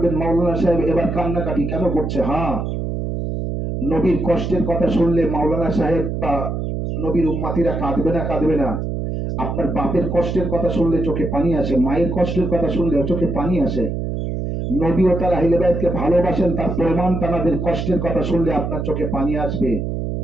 মাওলানা সাহেব এবার কান্নাকাটি কেন করছে? হ্যাঁ, নবীর কষ্টের কথা শুনলে মাওলানা সাহেব বা নবীর উম্মাতিরা কাঁদবে না? কাঁদবে না? আপনার বাপের কষ্টের কথা শুনলে চোখে পানি আসে, মায়ের কষ্টের কথা শুনলে চোখে পানি আসে। নবী ও তার আহলে বাইতকে ভালোবাসেন, তার প্রমাণ তাদের কষ্টের কথা শুনলে আপনার চোখে পানি আসবে।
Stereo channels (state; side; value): noise; right; hum, 3 dB below the sound